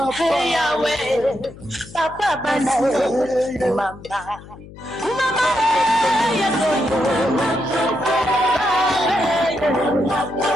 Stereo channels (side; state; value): left; noise; hum, 18 dB below the sound